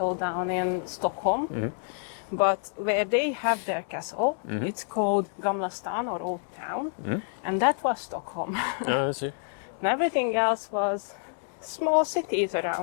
down in Stockholm. But where they have their castle, it's called Gamla Stan or Old Town, and that was Stockholm. I see. And everything else was small cities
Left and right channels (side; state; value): right; silent; digital silence